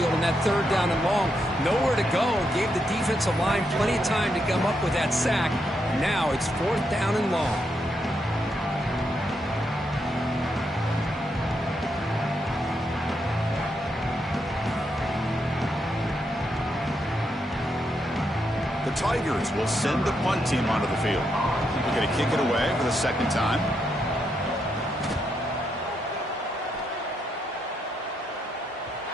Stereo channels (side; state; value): both; normal; correlation 0.80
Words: in that 3rd down and long. Nowhere to go. Gave the defensive line plenty of time to come up with that sack. Now it's 4th down and long. The Tigers will send the punt team onto the field. They're going to kick it away for the second time.